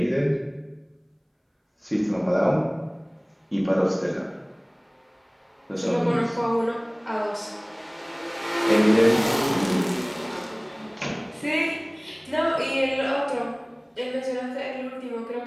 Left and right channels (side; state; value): both; identical; correlation 1.00